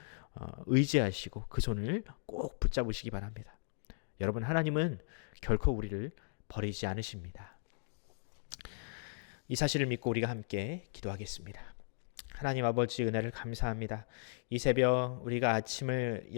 의지하시고 그 손을 꼭 붙잡으시기 바랍니다. 여러분 하나님은 결코 우리를 버리지 않으십니다. 이 사실을 믿고 우리가 함께 기도하겠습니다. 하나님 아버지 은혜를 감사합니다. 이 새벽 우리가 아침을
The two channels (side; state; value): right; silent; digital silence